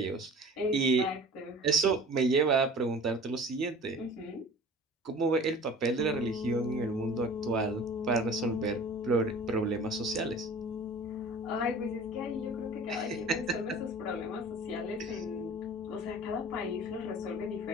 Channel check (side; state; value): both; normal; correlation 0.43